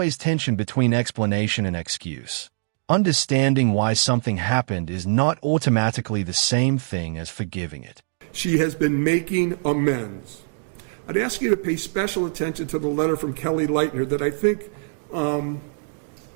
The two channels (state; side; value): silent; left; digital silence